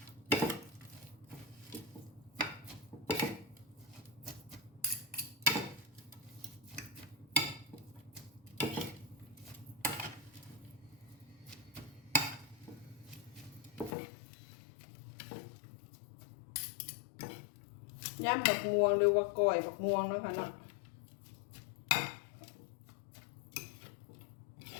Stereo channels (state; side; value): drops out; right; at 13.9 s